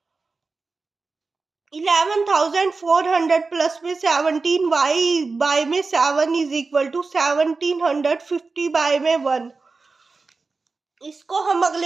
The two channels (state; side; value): quieter; left; 4.1 dB